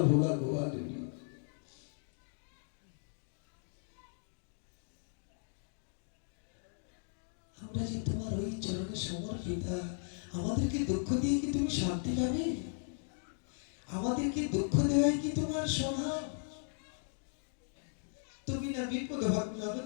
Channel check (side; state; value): right; silent; digital silence